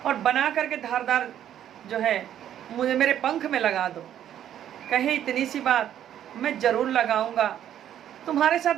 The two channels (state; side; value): quieter; left; 10.6 dB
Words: और बना करके धारदार जो है मुझे मेरे पंख में लगा दो। कहे इतनी सी बात, मैं ज़रूर लगाऊंगा, तुम्हारे साथ